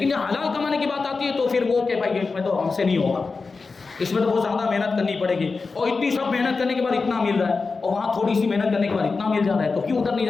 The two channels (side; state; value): right; quieter; 4.3 dB